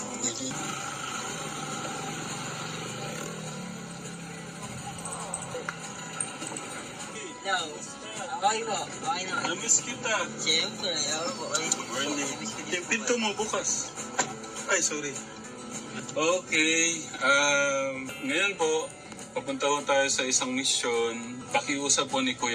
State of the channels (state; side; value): identical; both; correlation 1.00